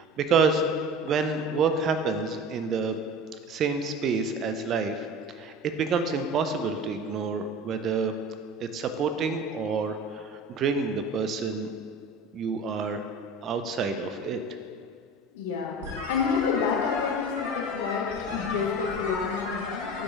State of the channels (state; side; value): normal; both; correlation 0.35